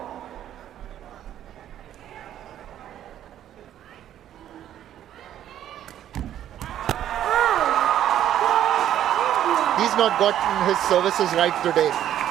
He's not gotten his services right today.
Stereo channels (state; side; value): quieter; left; 11.3 dB